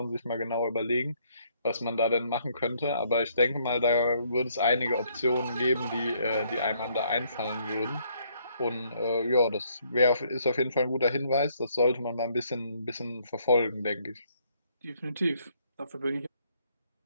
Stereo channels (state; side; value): inverted; both; correlation -0.68